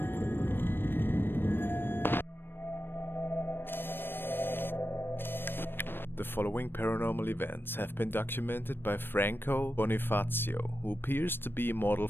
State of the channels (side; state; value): right; late; 0.099 ms